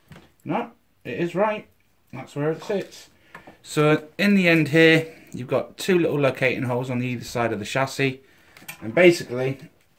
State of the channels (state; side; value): identical; both; correlation 1.00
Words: No, it is right. That's where it sits. So in the end here, you've got two little locating holes on either side of the chassis, and basically